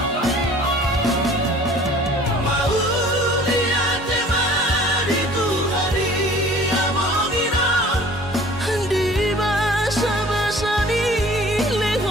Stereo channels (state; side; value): normal; both; correlation 0.49